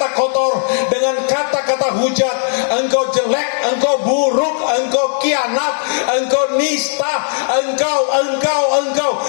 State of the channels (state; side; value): silent; right; digital silence